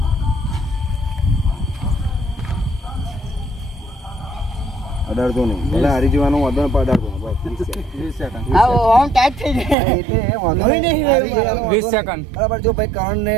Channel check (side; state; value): left; drops out; at 9.8 s